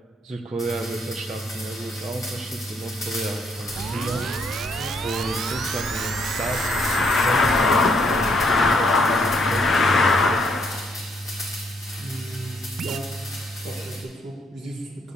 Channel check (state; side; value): normal; both; correlation 0.71